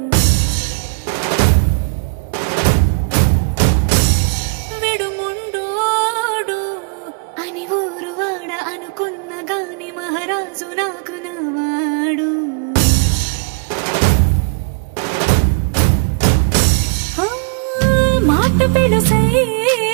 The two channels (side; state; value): left; quieter; 38.4 dB